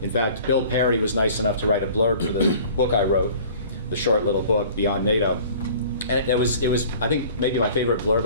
In fact, Bill Perry was nice enough to write a blurb for the book I wrote, the short little book, Beyond NATO. And it was, I think, maybe my favorite blurb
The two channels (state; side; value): inverted; both; correlation -0.47